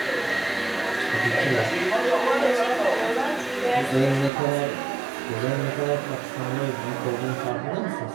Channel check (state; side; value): drops out; left; at 4.3 s